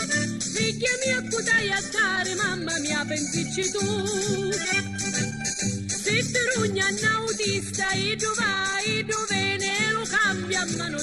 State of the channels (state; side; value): identical; both; correlation 1.00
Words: Figlia mia, cudai a dare, mamma mia, pensici tu. Se ti rugna un autista, e tu vai, e tu vieni, e lo cambia a mano